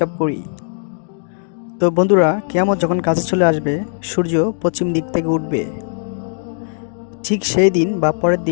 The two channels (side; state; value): right; silent; digital silence